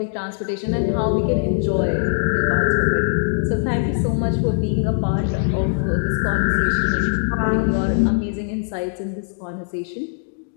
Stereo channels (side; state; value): right; silent; digital silence